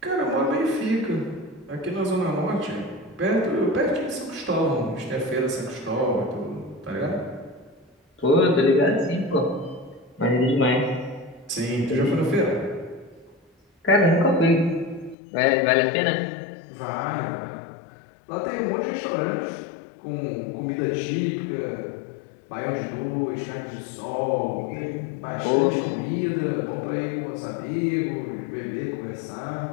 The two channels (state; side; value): drops out; right; at 15.2 s